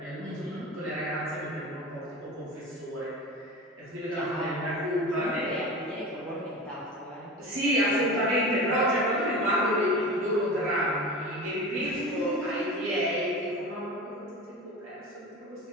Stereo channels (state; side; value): normal; both; correlation 0.31